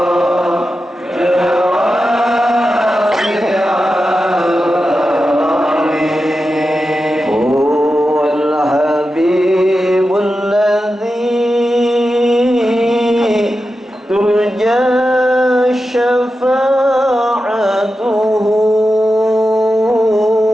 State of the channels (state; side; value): normal; both; correlation 0.91